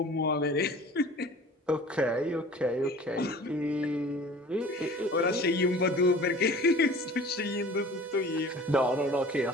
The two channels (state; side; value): normal; both; correlation 0.44